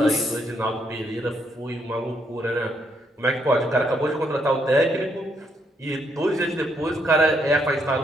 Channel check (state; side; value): normal; both; correlation 0.75